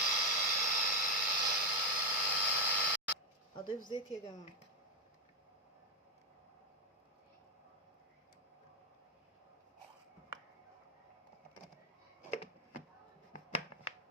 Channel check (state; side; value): normal; both; correlation 0.06